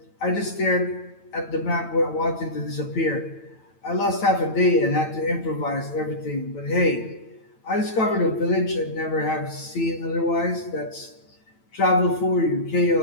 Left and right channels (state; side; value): late; right; 9.0 ms